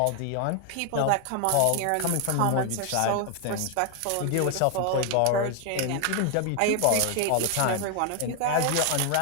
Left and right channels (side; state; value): both; different; correlation 0.01